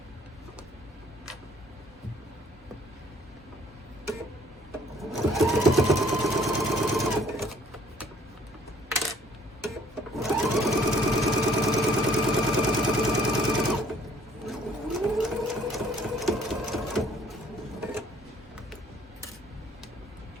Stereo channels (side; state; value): both; normal; correlation 0.59